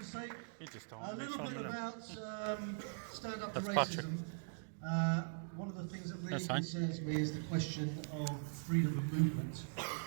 to say a little bit about stand up to racism. One of the things that really concerns me is the question of freedom of movement,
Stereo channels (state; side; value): silent; left; digital silence